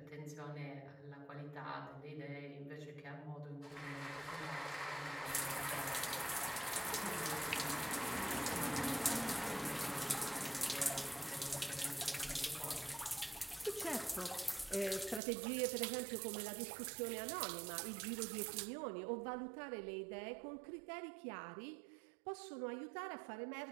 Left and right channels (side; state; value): left; drops out; at 15.2 s